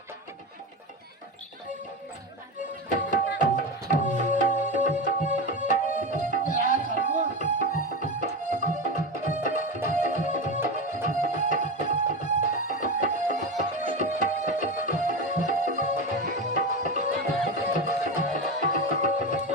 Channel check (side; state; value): both; normal; correlation 0.20